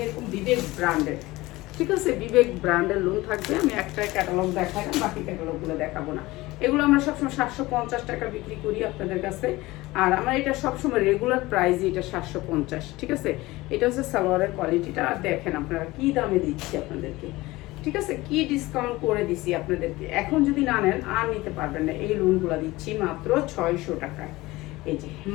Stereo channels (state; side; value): quieter; right; 19.8 dB